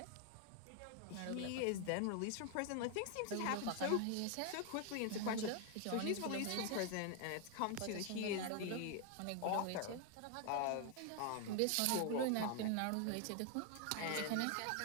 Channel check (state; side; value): different; both; correlation 0.00